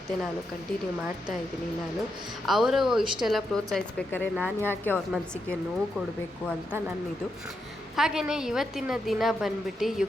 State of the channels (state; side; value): normal; both; correlation 0.83